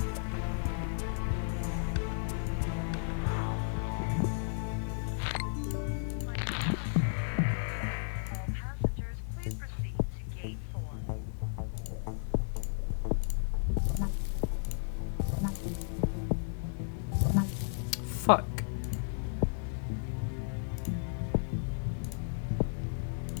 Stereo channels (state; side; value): silent; right; digital silence